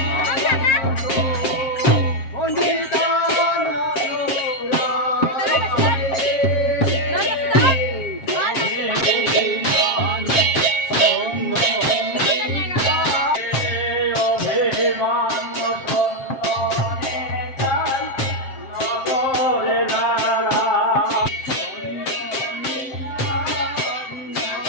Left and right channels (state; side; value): late; right; 7.6 ms